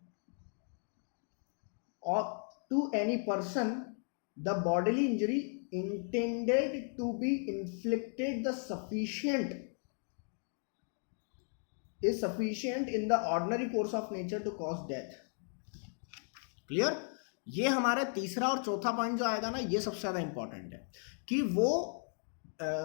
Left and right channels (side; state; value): right; silent; 54 dB below the other